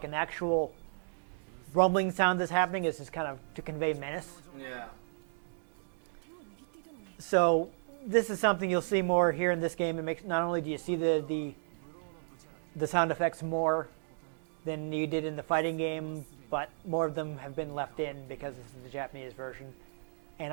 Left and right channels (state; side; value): silent; left; digital silence